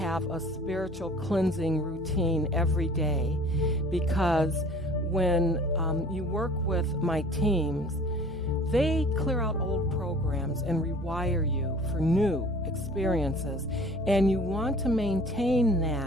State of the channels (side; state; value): both; normal; correlation 0.48